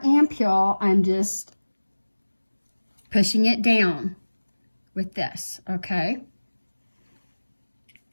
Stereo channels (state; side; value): inverted; both; correlation -1.00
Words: ampoule, I'm just pushing it down with this, okay?